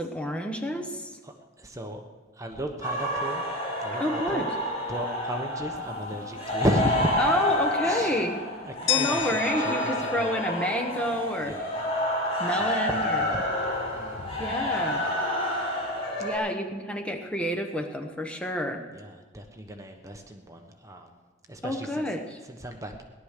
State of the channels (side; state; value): both; normal; correlation 0.27